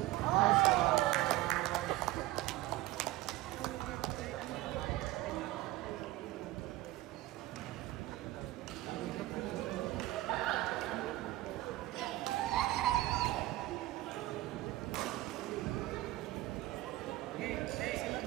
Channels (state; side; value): quieter; left; 17.2 dB